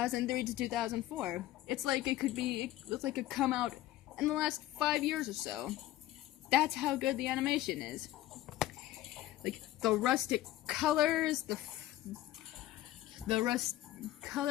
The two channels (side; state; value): right; quieter; 14.9 dB